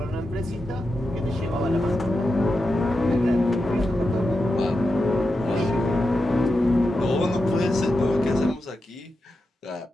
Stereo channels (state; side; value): normal; both; correlation 0.89